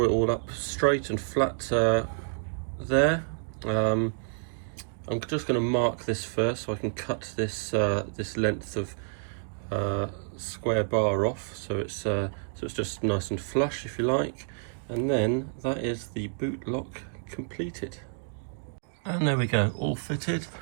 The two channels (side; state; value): left; silent; digital silence